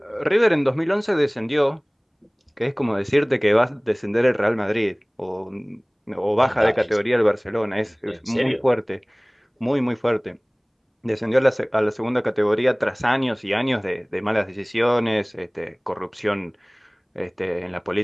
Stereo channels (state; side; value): identical; both; correlation 1.00